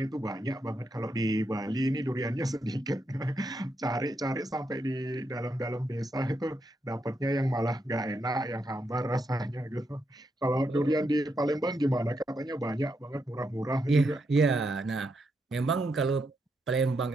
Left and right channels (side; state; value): both; normal; correlation 0.81